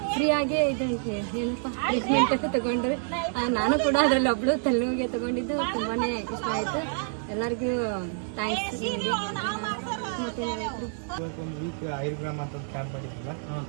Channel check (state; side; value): silent; left; digital silence